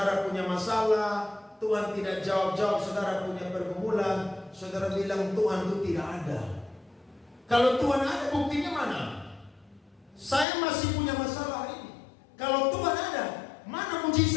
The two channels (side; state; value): right; drops out; at 10.5 s